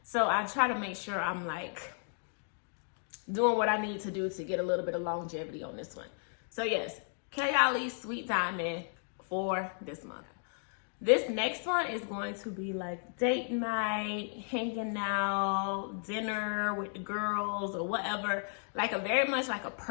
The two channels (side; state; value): right; silent; 55 dB below the other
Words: So I try to make sure I'm like doing what I need to do to get a little bit of longevity on this one. So yes, Kayali Sweet Diamond for this month. This next one is going to be like date night, hanging out, dinner with the girls or whatever. Like a very much like a